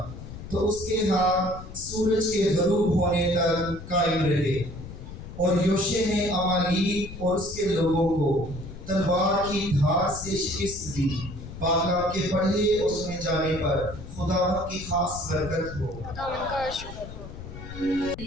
तो उसके हाथ सूरज के गरूब होने तक कायम रहे। और योशे ने अमालेक और उसके लोगों को तलवार की धार से शिकस्त दी। बाकाम के पढ़े और सुने जाने पर खुदावंद की खास बरकत हो। खुदावंद का शुक्र हो।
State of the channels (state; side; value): noise; left; rumble, 12 dB below the sound